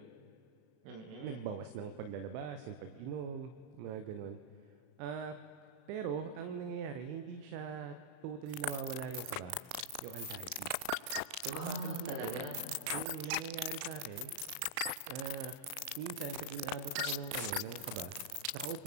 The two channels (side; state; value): left; late; 36 ms